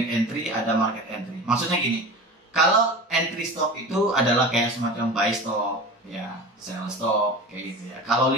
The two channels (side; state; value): both; normal; correlation 0.33